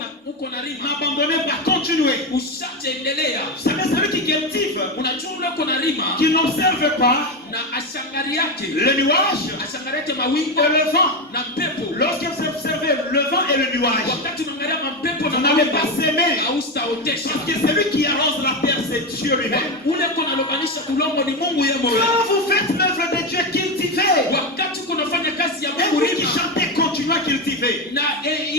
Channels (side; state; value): both; normal; correlation 0.14